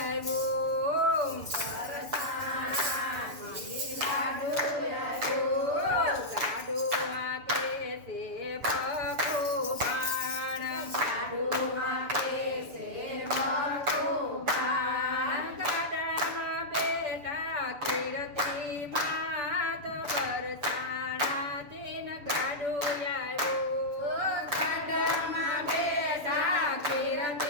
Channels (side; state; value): left; late; 6.9 ms